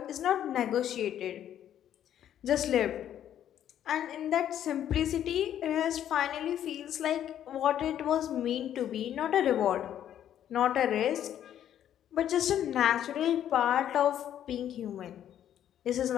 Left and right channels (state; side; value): quieter; right; 10.6 dB